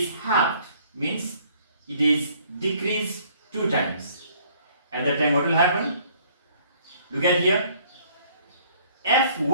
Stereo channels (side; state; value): both; inverted; correlation -0.59